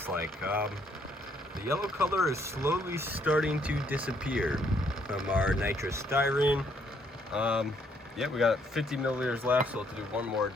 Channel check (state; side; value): normal; both; correlation 0.69